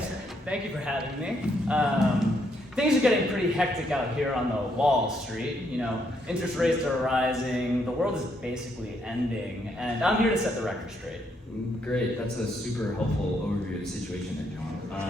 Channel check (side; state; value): both; normal; correlation 0.74